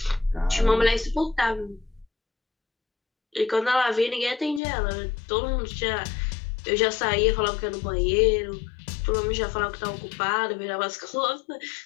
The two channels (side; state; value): right; drops out; at 4.6 s